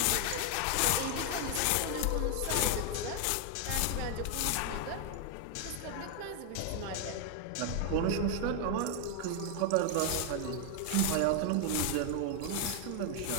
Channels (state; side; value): different; both; correlation 0.00